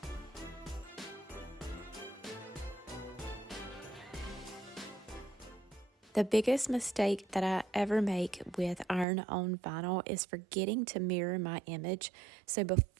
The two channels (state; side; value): drops out; left; at 9.1 s